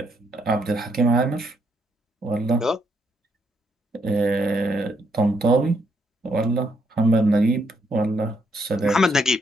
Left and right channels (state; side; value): normal; both; correlation 0.75